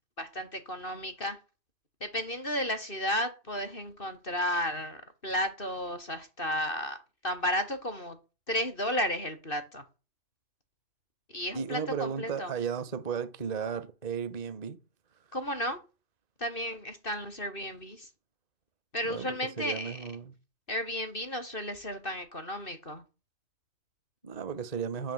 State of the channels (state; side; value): late; right; 2.6 ms